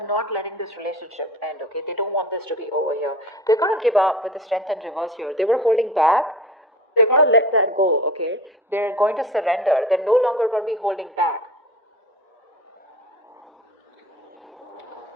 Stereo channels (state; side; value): normal; both; correlation 0.36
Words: not letting this relationship end, okay? They don't want this to be over here. They're going to give up with the Strength in reverse here. They were holding back. They're going to let that go, okay? They're going to surrender. They're no longer going to be holding back.